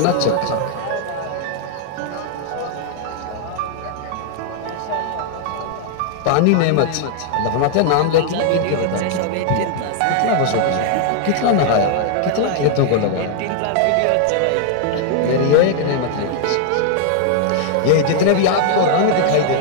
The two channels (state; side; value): different; both; correlation 0.00